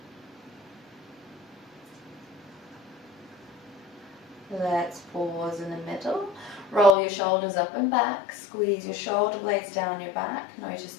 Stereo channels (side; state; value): right; drops out; at 7.0 s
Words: Let's pause in the middle. Roll your shoulders up and back. Squeeze your shoulder blades down your back. Notice